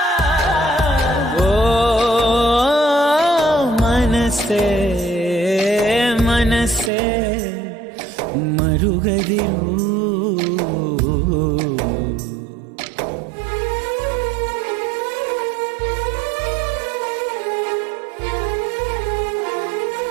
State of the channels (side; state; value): left; drops out; at 6.9 s